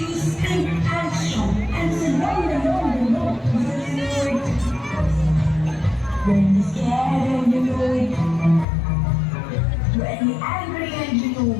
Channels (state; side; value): drops out; right; at 8.7 s